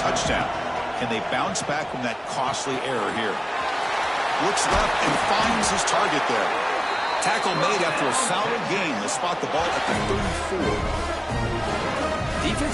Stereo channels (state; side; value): identical; both; correlation 1.00